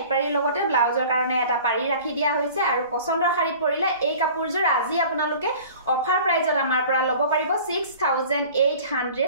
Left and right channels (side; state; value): both; inverted; correlation -0.44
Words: পাৰিৰ লগতে ব্লাউজৰ কাৰণে এটা পাৰি ৰাখি দিয়া হৈছে আৰু পছন্দৰ শাৰীত পৰিলে এই কাপোৰজোৰ আজি আপোনালোকে অফাৰ প্ৰাইজত আমাৰ পৰা ল'ব পাৰিব 6800